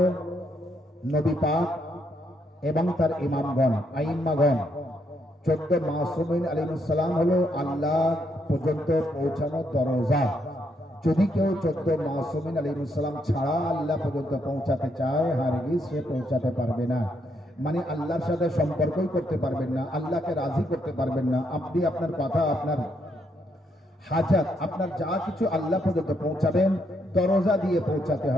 নবী পাক এবং তার ইমামগণ, আইম্মাগণ। 14 মাসুমিন আলাইহিস সালাম হলো আল্লাহ পর্যন্ত পৌঁছানোর দরজা। যদি কেউ 14 মাসুমিন আলাইহিস সালাম ছাড়া আল্লাহ পর্যন্ত পৌঁছাতে চায়, হারগিজ সে পৌঁছাতে পারবে না। মানে আল্লাহর সাথে সম্পর্কই করতে পারবেন না, আল্লাহকে রাজি করতে পারবেন না। আপনি আপনার কথা, আপনার হাজাত, আপনার যা কিছু আল্লাহ পর্যন্ত পৌঁছাবেন দরজা দিয়ে পৌঁছাতে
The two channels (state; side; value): normal; both; correlation 0.76